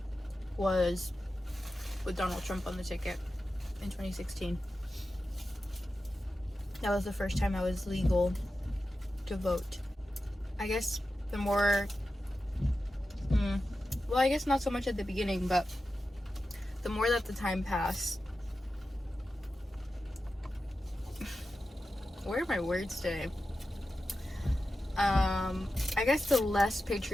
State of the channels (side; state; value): both; normal; correlation 0.92